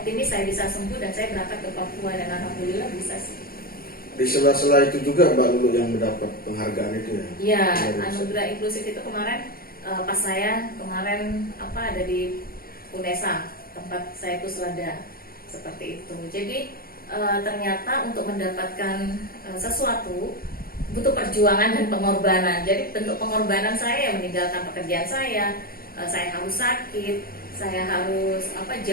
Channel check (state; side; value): late; right; 0.43 ms